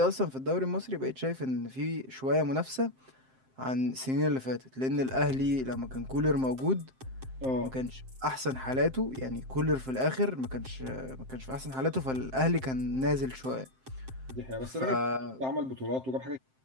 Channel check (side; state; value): left; late; 7.6 ms